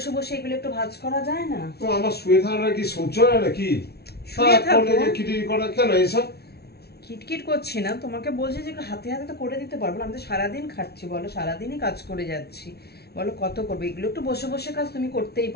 বসে এগুলো একটু ভাঁজ করা যায় না? তো আমার শুয়ে থাকা কি সহ্য হয় নাকি? শুয়ে থাকো। খিটির করা কেন এইসব? কিটকিট করছি না, তোমাকে বলছি যে একটু হাতে হাতে তো করে দিতে পারবো না? আমি তো সারাদিন খাচ্ছি বলো, সারাদিনই কাজ করে যাচ্ছি বলো, কত করবে এগুলো? একটু বসে বসে কাজ তুমি করতেই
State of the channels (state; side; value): late; right; 0.47 ms